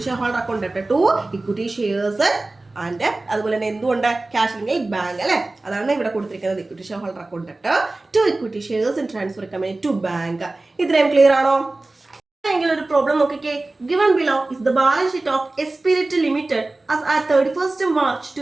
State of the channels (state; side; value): quieter; left; 3.0 dB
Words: share holder account ഡെപ്റ്റ് to equity shares and അതുപോലെ തന്നെ എന്തുകൊണ്ട് ക്യാഷ് അല്ലെങ്കിൽ ബാങ്ക് അല്ലെ. അതാണ് ഇവിടെ കൊടുത്തിരിക്കുന്നത് equity share holder account ഡെപ്റ്റ് to equity shares in transfer company to bank. ഇത്രയും ക്ലിയർ ആണോ? എങ്കിൽ ഒരു പ്രോബ്ലം നോക്കിക്കേ. Given below is the balance sheet of Esprit limited as at 31st March